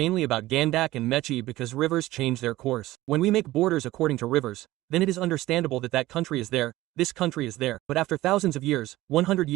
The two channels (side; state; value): left; quieter; 16.9 dB